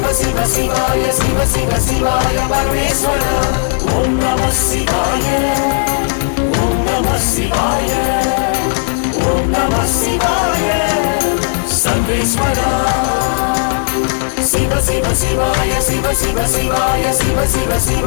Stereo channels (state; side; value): silent; right; digital silence